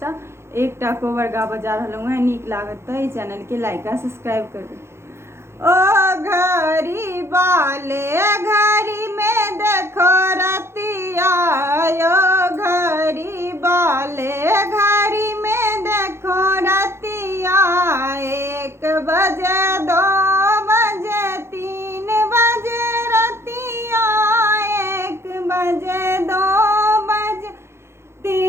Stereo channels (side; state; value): left; late; 0.12 ms